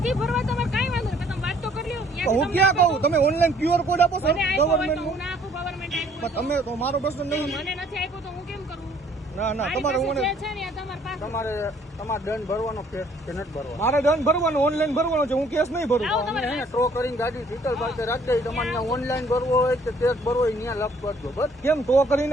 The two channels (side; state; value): both; normal; correlation 0.60